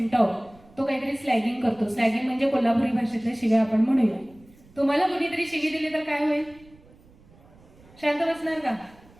तो काहीतरी स्लॅगिंग करतो. स्लॅगिंग म्हणजे कोल्हापुरी भाषेतल्या शिव्या आपण म्हणूया. तुम्हाला कुणीतरी शिवी दिली तर काय होईल? शांत बसणार का?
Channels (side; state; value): right; noise; rumble, 26 dB below the sound